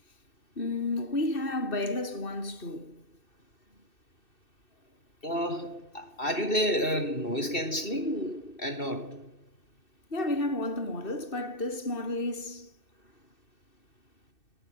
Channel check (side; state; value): right; late; 2.6 ms